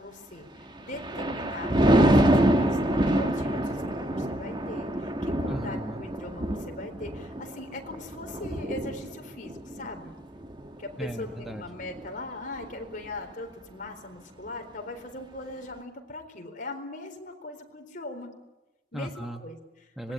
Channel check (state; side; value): normal; both; correlation 0.70